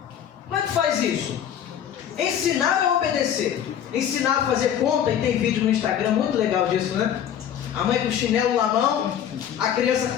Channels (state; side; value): quieter; right; 9.5 dB